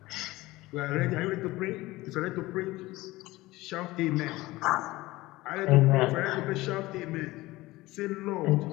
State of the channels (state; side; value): quieter; right; 19.1 dB